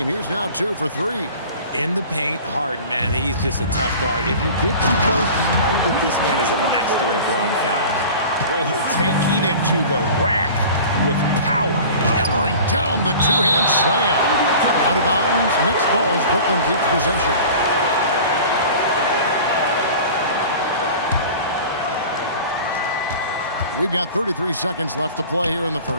He's now 2 for 3. In the paint, Harden, man, he's just a tough guard. If you get too close, you know that this man is a master at drawing fouls. Oh, taking it to the rack with power. Hammering down the 2-hand slam. Out of bounds. Next ball as Brooklyn keeps possession. We've got 33 seconds left to play here in the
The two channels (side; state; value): both; inverted; correlation -0.40